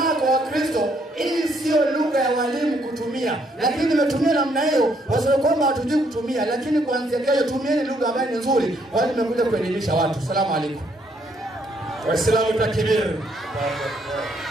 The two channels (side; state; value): both; normal; correlation 0.70